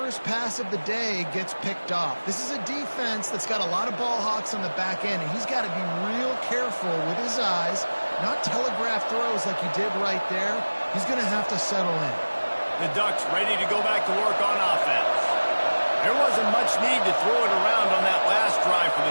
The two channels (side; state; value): both; inverted; correlation -1.00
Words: pass of the day gets picked off. This is a defense that's got a lot of ball hawks on the back end, and he's got to be real careful with his eyes, not telegraph throws like he did right there. He's going to have to settle in. The Ducks ready to go back to work on offense. There wasn't much need to throw it around on that last drive for